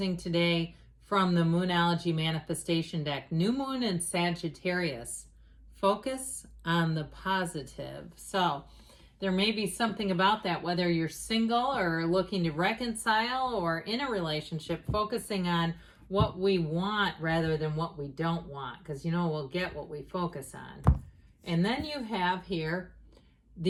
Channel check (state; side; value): identical; both; correlation 1.00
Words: today from the Moonology Manifestation deck. New Moon in Sagittarius. Focus on the positive. So there may be something about that, whether you're single or looking to reconcile or in a relationship, focusing on what we want rather than what we don't want, because we'll get what we focus on. And then you have here,